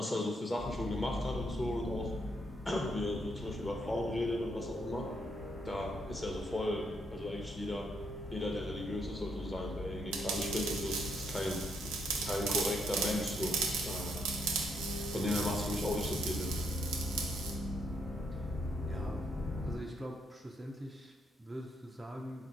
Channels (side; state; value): both; normal; correlation 0.74